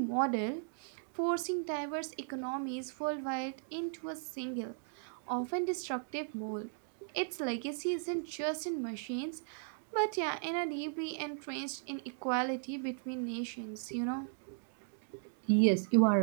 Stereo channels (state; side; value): silent; left; digital silence